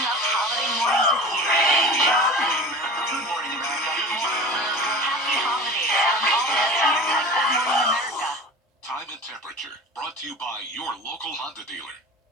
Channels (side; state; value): both; normal; correlation 0.36